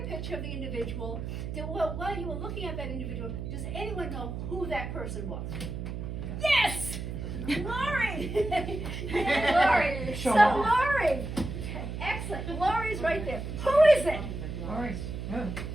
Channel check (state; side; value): noise; right; hum, 6 dB below the sound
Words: picture of the individual. While you were looking at that individual, does anyone know who that person was? Yes! Lori! Yeah, Lori! Show So off. Lori! Excellent, Lori's right there. Who is it? All right. Oh.